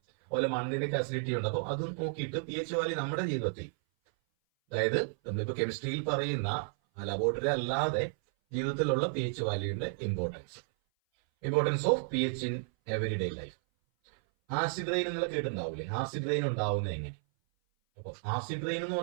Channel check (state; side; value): silent; left; 56 dB below the other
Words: അതുപോലെ മണ്ണിന്റെ അസിഡിറ്റി ഉണ്ട്. അപ്പോൾ അതും നോക്കിയിട്ട് പി എച്ച് വാല്യൂ നമ്മുടെ ജീവിതത്തിൽ, അതായത് നമ്മളിപ്പോൾ കെമിസ്ട്രിയിൽ പറയുന്ന ലബോറട്ടറി അല്ലാതെ ജീവിതത്തിലുള്ള പി എച്ച് വാല്യൂവിന്റെ importance of P H in everyday life. Acid rain എന്നുള്ള കേട്ടുണ്ടാവില്ലേ? ആസിഡ് റെയിൻ ഉണ്ടാവുന്നത് എങ്ങനെ? അപ്പോൾ ആസിഡ് റെയിൻ എന്ന്